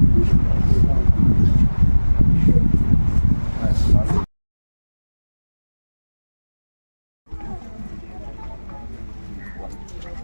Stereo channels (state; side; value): inverted; both; correlation -1.00